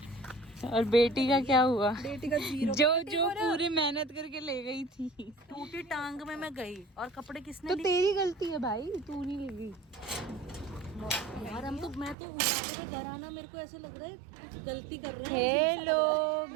और बेटी का क्या हुआ? बेटी का 0। जो पूरी मेहनत करके ले गई थी। टूटी टांग में मैं गई और कपड़े किसने तो लिए? तेरी गलती है भाई, तू नहीं ले गई। यार हम तो मैं तो उठाने के घर आना मेरे को ऐसे लग रहा है कुछ गलती कर रहे हैं। हेलो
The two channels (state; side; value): drops out; left; at 12.2 s